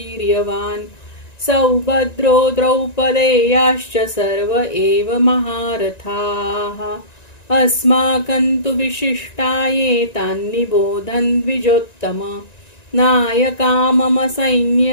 सौभद्रो द्रौपदेयाश्च सर्व एव महारथाः अस्माकं तु विशिष्टाये तान्निबोधन् द्विजोत्तम नायका मम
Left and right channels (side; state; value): right; late; 1.9 ms